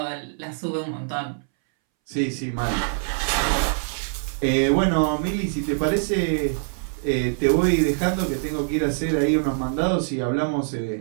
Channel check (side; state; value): left; silent; 63 dB below the other